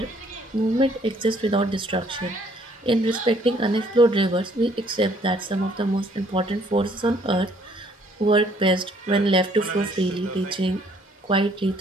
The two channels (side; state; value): both; normal; correlation 0.63